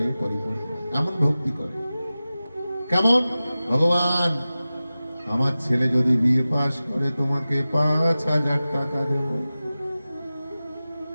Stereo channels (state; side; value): inverted; both; correlation -0.96